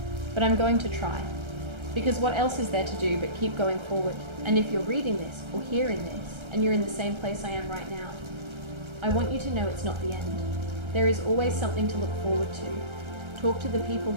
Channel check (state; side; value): late; left; 1.3 ms